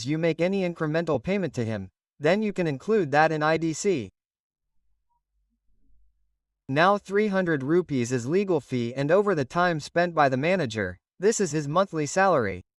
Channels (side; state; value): both; identical; correlation 1.00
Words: you make any incremental payment to him, then you can include that in IDC. Now 300 rupees is legal fee and over the time spent by the manager, this is his monthly salary.